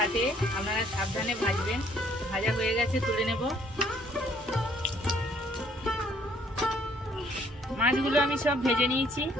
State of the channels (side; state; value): both; normal; correlation 0.63